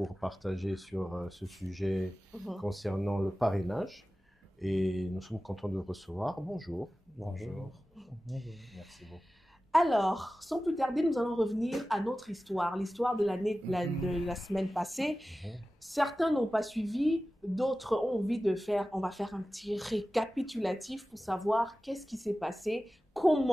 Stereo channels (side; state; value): both; normal; correlation 0.95